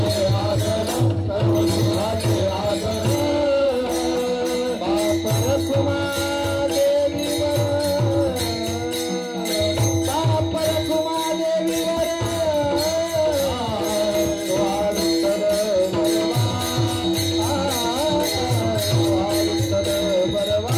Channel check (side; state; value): both; identical; correlation 1.00